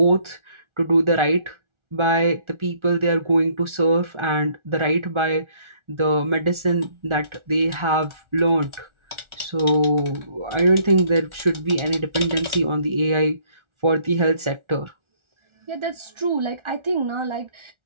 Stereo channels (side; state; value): left; late; 1.4 ms